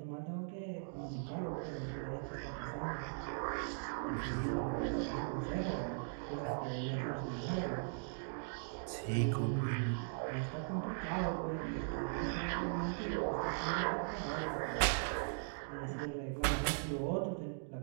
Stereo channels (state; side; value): silent; left; digital silence